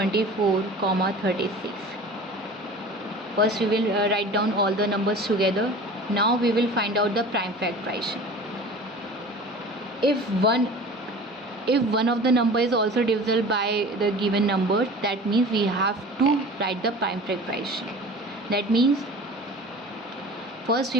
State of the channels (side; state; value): both; normal; correlation 0.40